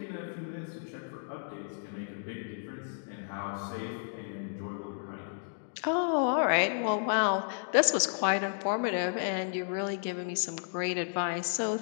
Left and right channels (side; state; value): right; silent; digital silence